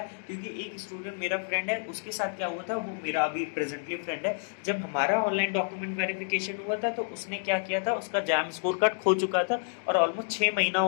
क्योंकि एक स्टूडेंट मेरा फ्रेंड है, उसके साथ क्या हुआ था, वो मेरा अभी प्रेजेंटली फ्रेंड है, जब हमारा ऑनलाइन डॉक्यूमेंट वेरिफिकेशन हुआ था तो उसने क्या किया था, उसका जैम स्कोर कार्ड खो चुका था और ऑलमोस्ट 6 महीना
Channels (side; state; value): right; silent; digital silence